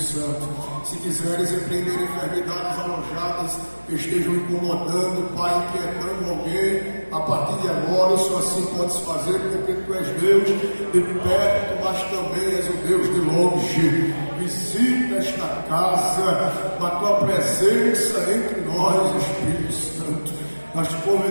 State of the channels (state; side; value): inverted; both; correlation -1.00